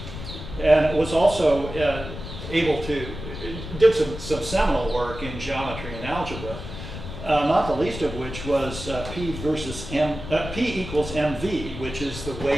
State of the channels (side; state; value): left; noise; rumble, 10 dB below the sound